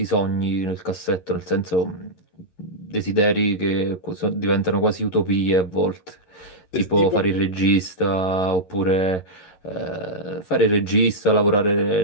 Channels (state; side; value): late; right; 11 ms